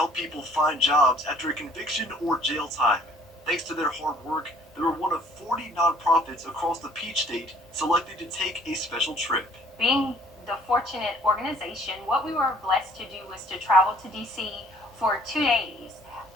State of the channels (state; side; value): normal; both; correlation 0.58